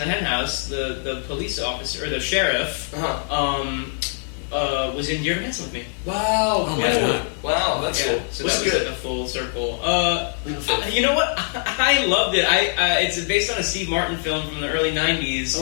Hen House, the police officer or the sheriff, was in Dear Evan Hansen with me. Wow. Oh my God. Wow, that's cool. So What's that was good? like a full circle. You know what? I loved it. It's based on a Steve Martin film from the early '90s.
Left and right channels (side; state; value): right; silent; 64 dB below the other